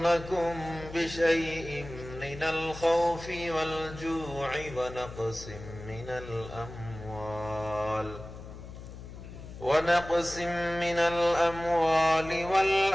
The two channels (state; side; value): noise; left; hum, 13 dB below the sound